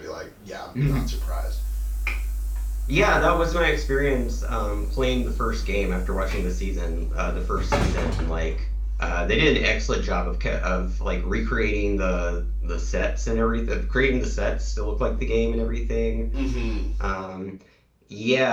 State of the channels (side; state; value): both; identical; correlation 1.00